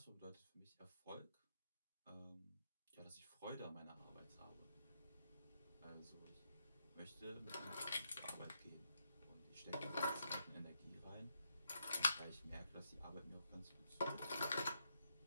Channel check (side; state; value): both; inverted; correlation -0.80